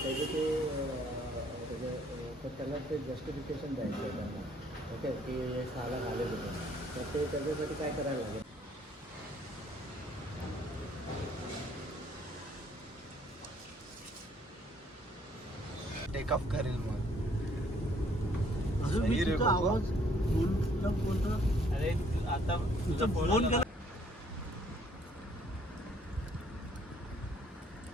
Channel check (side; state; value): both; normal; correlation 0.63